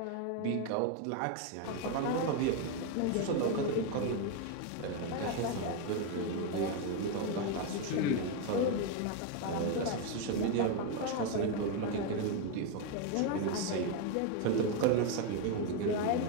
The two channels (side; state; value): both; different; correlation 0.02